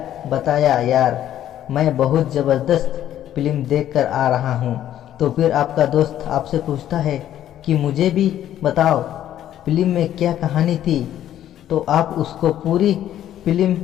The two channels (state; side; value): quieter; right; 11.6 dB